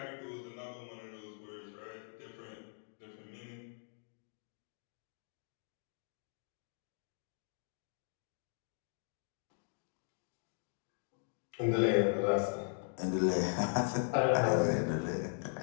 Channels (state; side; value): silent; right; digital silence